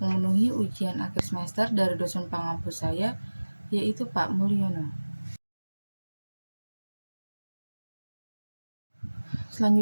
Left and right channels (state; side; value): inverted; both; correlation -1.00